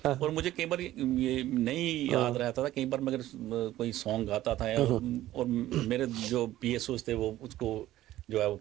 और मुझे कई बार ये नहीं याद रहता था, कई बार मैं अगर कोई सॉन्ग गाता था और मेरे जो पीएसओ थे वो उसको जो है वो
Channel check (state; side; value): quieter; left; 14.6 dB